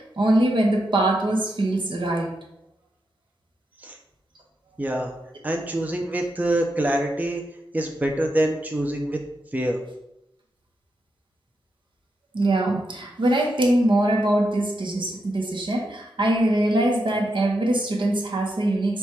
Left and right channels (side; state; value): both; normal; correlation 0.84